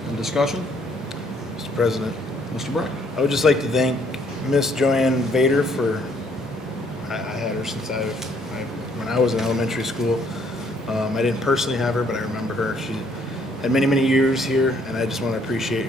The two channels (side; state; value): both; normal; correlation 0.66